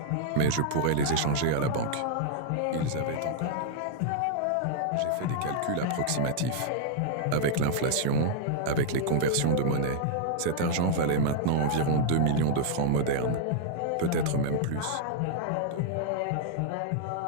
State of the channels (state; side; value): different; both; correlation -0.01